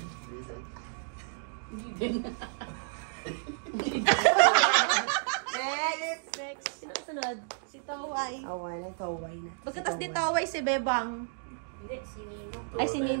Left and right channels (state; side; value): silent; left; digital silence